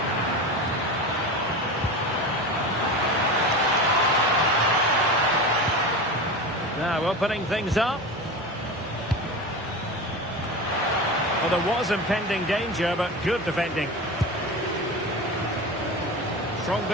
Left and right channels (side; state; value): both; normal; correlation 0.27